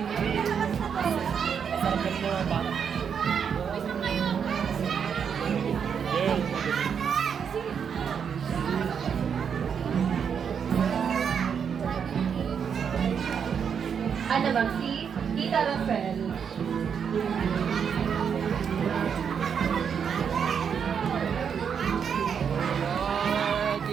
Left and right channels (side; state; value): left; quieter; 7.2 dB